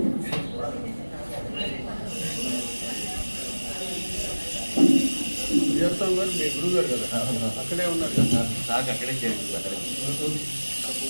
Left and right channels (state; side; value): inverted; both; correlation -1.00